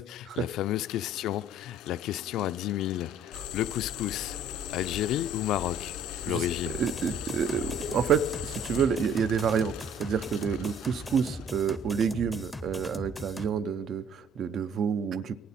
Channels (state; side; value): normal; both; correlation 0.55